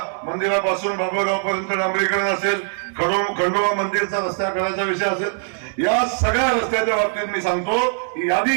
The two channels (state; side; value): silent; left; 63 dB below the other